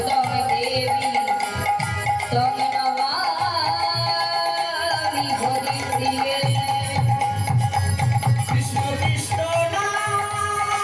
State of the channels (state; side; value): identical; both; correlation 1.00